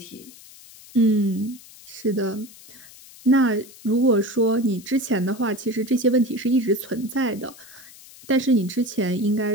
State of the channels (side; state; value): left; noise; hiss, 21 dB below the sound